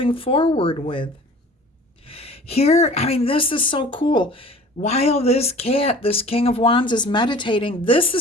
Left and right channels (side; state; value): both; normal; correlation 0.45